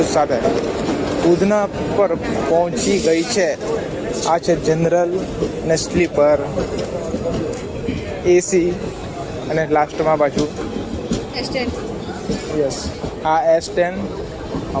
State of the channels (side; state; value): both; identical; correlation 1.00